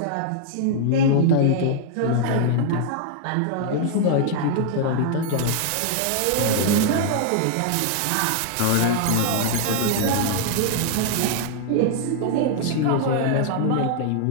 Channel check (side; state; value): both; different; correlation -0.01